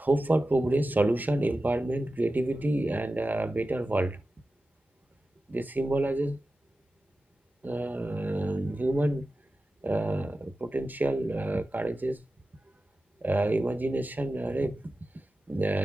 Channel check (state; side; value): normal; both; correlation 0.94